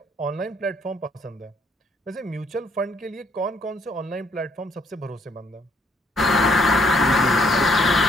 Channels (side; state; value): both; normal; correlation 0.67